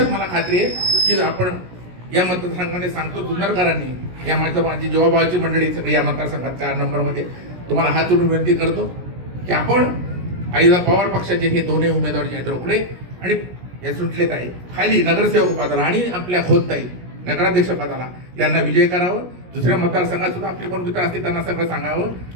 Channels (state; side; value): late; left; 17 ms